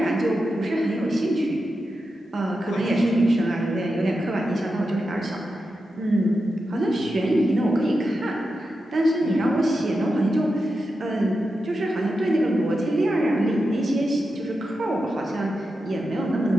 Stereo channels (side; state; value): both; normal; correlation 0.89